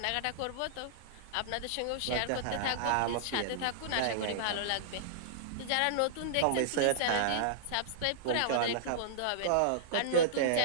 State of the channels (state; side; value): different; both; correlation -0.02